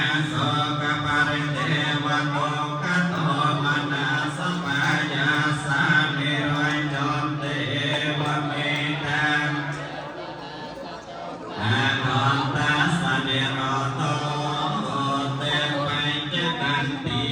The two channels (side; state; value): both; identical; correlation 1.00